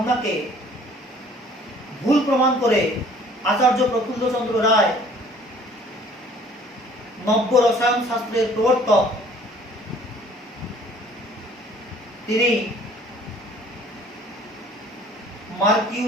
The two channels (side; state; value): both; normal; correlation 0.54